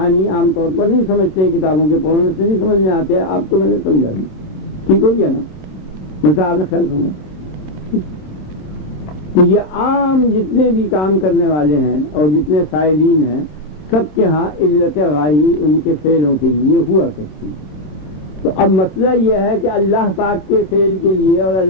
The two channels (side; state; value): right; late; 27 ms